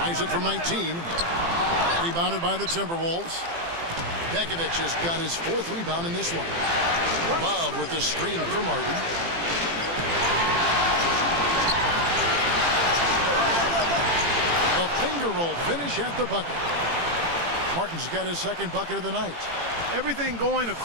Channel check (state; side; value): late; left; 18 ms